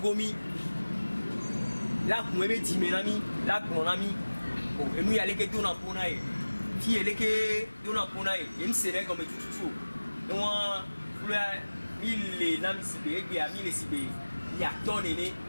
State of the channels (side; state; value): both; inverted; correlation -1.00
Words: la kumebe time nami la konami o enu ya leke to na pona e ti eleke to na pona e em sere comme tututu e wa fula ile na mi sibe egbe ami le sibe ya tonene